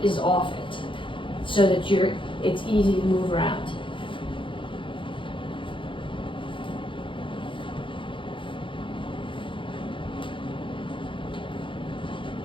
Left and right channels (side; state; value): right; late; 0.25 ms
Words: is off it. So that it's easy to move around.